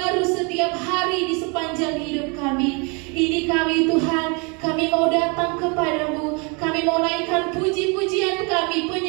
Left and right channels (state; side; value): quieter; left; 31.9 dB